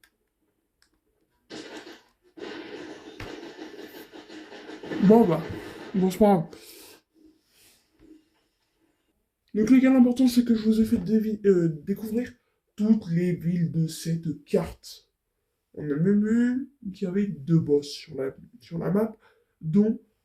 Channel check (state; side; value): identical; both; correlation 1.00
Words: Bon bah, bon c'est pas grave. Donc les gars, l'important c'est que je vous ai fait découvrir toutes les villes de cette carte. On a même vu qu'il y avait deux boss sur la map, dont